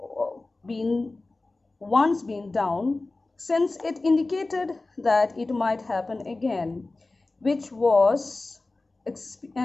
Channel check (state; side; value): quieter; right; 3.2 dB